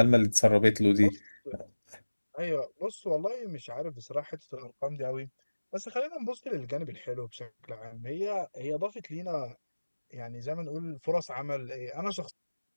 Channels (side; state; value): both; inverted; correlation -1.00